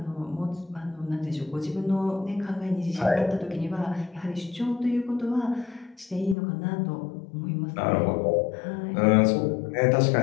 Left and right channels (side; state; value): right; drops out; at 6.4 s